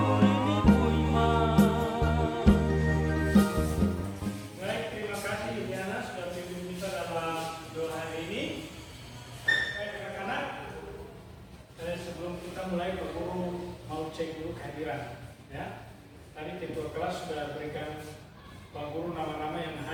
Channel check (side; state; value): both; identical; correlation 1.00